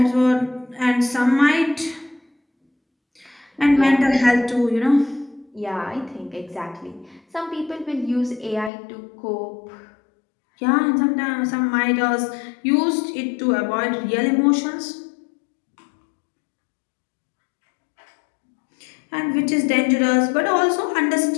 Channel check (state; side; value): drops out; right; at 8.7 s